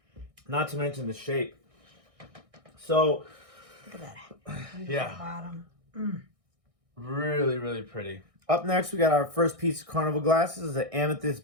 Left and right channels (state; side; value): late; left; 1.6 ms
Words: Not to mention the shape. So, look at that. Yeah. Bottom. Really, really pretty. Up next, we got our first piece of Carnival Glass. This is an